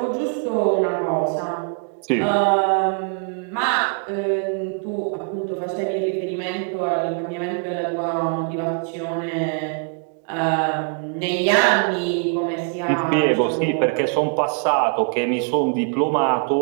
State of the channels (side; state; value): left; quieter; 39.0 dB